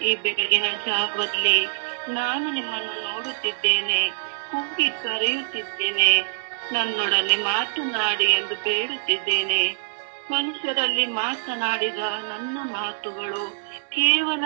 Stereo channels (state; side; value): silent; left; 62 dB below the other